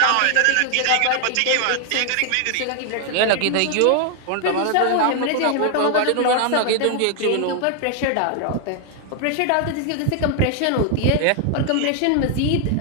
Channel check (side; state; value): both; different; correlation 0.00